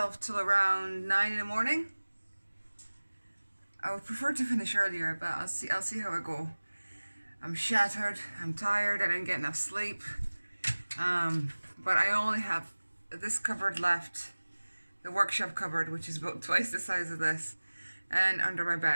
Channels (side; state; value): both; inverted; correlation -1.00